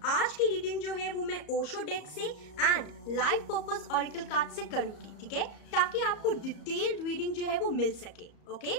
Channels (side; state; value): right; late; 34 ms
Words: आज की रीडिंग जो है वो मैं ओशो डेक से and life purpose oracle card से करूंगी, ठीक है, ताकि आपको डिटेल्ड रीडिंग जो है वो मिल सके। Okay,